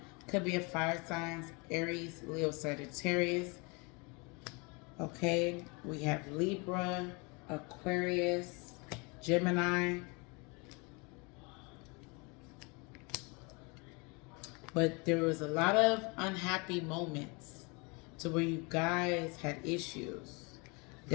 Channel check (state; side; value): quieter; right; 29.9 dB